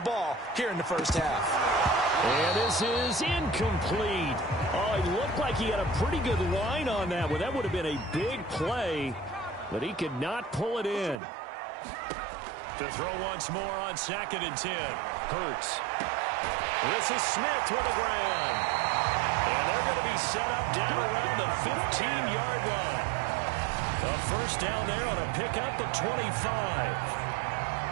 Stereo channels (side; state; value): left; drops out; at 11.2 s